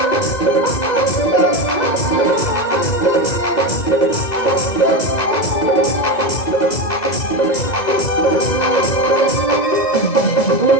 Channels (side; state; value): right; late; 2.0 ms